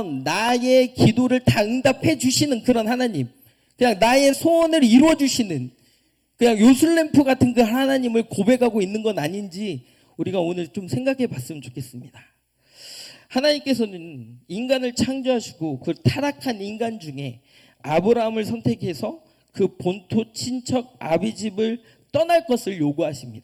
나의 기도를 다 응답해 주시는 그런 하나님, 그냥 나의 소원을 이루어 주시는 그냥 요술램프 같은 그 하나님을 고백하고 있는 건 아닌지 우리가 오늘 좀 생각해 봤으면 좋겠습니다. 하나님께서는 인간을 창조하시고 그 타락한 인간 중에 아브라함을 선택해서 그 본토 친척 아비 집을 떠날 것을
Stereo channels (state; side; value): identical; both; correlation 1.00